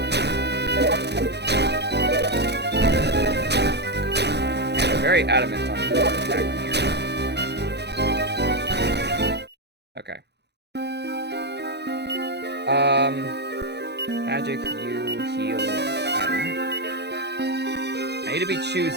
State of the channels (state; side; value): late; left; 0.49 ms